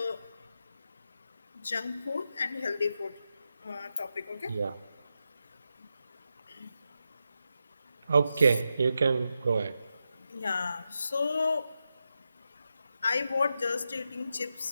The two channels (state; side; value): inverted; both; correlation -0.88